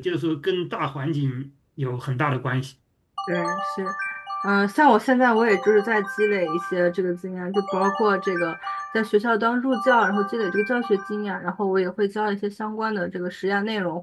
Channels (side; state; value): both; identical; correlation 1.00